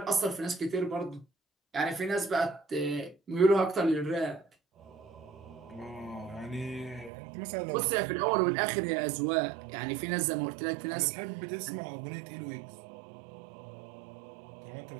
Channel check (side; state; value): left; drops out; at 7.1 s